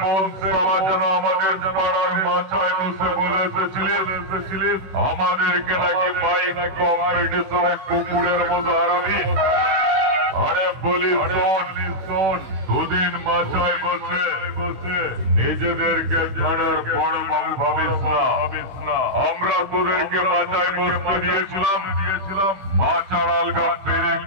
কোন সভা যেন আমাদের পাড়ার মাচায় বসে বলে এসেছিলিস আমাদেরকে নাকি বাইক কম্পিটিশনে কুকুরের মতো হারাবি। আরে বলি শোন, দুদিন মাচায় বসে নিজেদেরকে থানার বড় বাবু ভাবিস না। আমরা তোদেরকে মাচায় বসতে দিয়েছিলাম মাচার আলগা পেরেক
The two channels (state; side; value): late; left; 16 ms